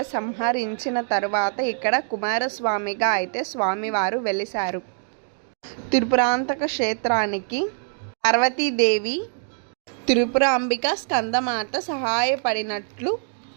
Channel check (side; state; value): left; silent; 63 dB below the other